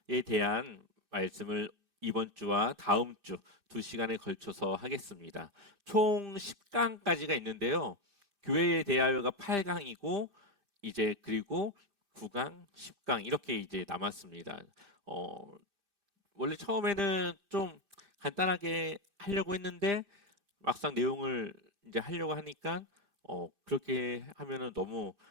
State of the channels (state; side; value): late; left; 2.6 ms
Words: 대한 말씀을 이번 주와 다음 주 2시간에 걸쳐서 하겠습니다. 총 10강까지가 있는데요. 교회에 대하여가 8강이고 이제 그리고 9강, 10강 이렇게 이제 남았습니다. 원래 처음에는 좀 간단하게 하려고 했는데 막상 내용을 이제 하려고 하니까 그렇게 하면은 너무